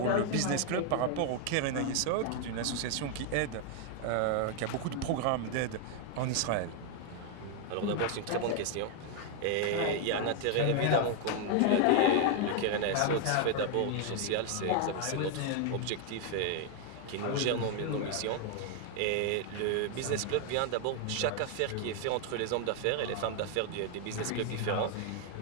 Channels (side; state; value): both; different; correlation 0.01